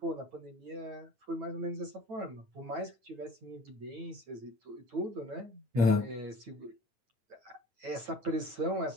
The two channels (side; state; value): left; late; 9.0 ms